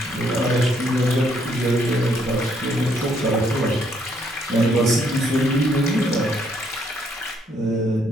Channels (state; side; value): normal; both; correlation 0.70